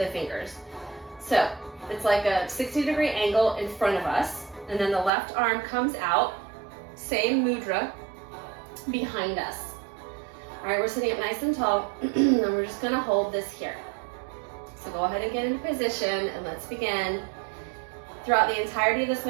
fingers. So it's like a 60-degree angle in front of us, and then the left arm comes out, same mudra, behind us. All right, we're sitting up nice and tall, and we're just gonna hold this here. So go ahead and get into position, and let's begin. Throughout the entirety of this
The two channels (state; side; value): drops out; left; at 5.1 s